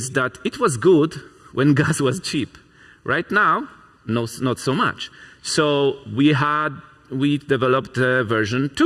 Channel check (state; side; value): identical; both; correlation 1.00